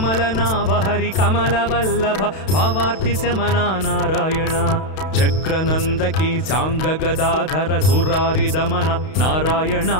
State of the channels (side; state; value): right; late; 32 ms